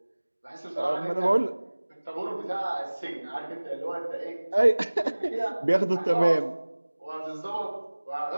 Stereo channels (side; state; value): both; inverted; correlation -1.00